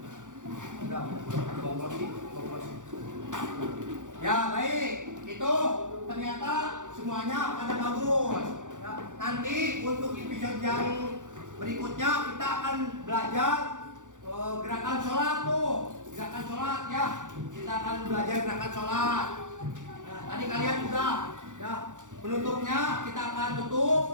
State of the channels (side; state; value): left; late; 0.86 ms